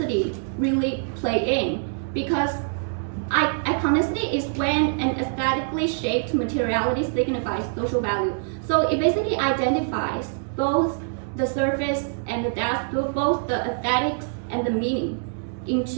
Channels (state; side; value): silent; left; 62 dB below the other